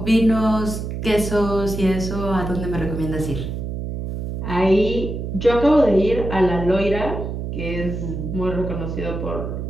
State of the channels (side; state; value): right; noise; hum, 5 dB below the sound